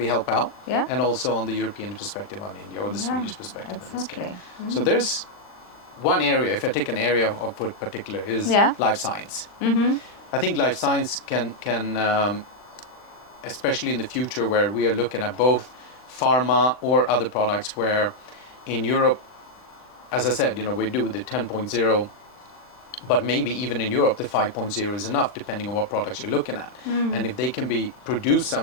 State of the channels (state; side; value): late; right; 39 ms